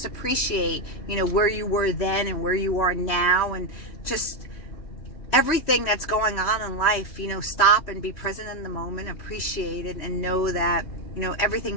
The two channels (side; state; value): right; late; 3.3 ms